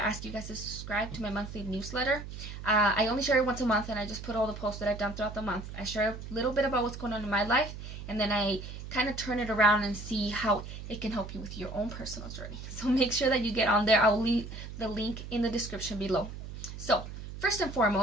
you guys to subscribe to my monthly newsletter. I only share it once a month, and I just put all the posts that I've done throughout the month. I share a little bit about what's going on in my life, and then I kind of turn it around and see how it can help you with your own personal journey. So make sure that you get on there. I'll leave the link in the description below. So first and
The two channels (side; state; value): right; noise; hum, 10 dB below the sound